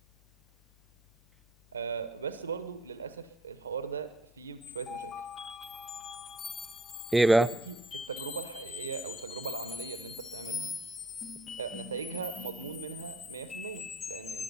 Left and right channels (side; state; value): left; noise; hum, 28 dB below the sound